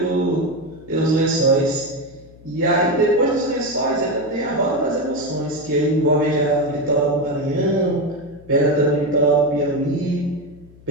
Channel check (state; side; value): noise; left; hum, 23 dB below the sound